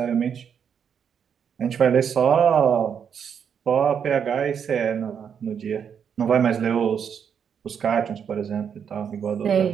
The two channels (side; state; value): left; quieter; 7.6 dB